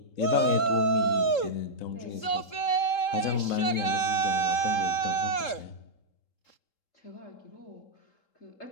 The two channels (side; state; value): right; late; 3.7 ms